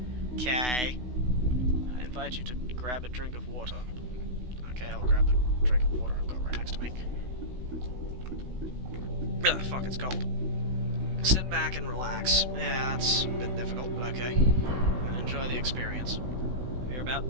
Okay. I invite you to grab a drink of water. Okay, I'll grab the drink of water I've got right next to me. Ugh, fuck, it's cold. Sit back and relax. Yeah, that's a bit difficult, but okay. And enjoy the experience. We're about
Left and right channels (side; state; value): left; late; 16 ms